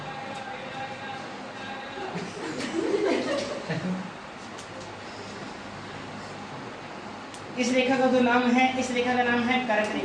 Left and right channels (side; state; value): both; identical; correlation 1.00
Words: इस रेखा का जो नाम है, इस रेखा का नाम है कर्क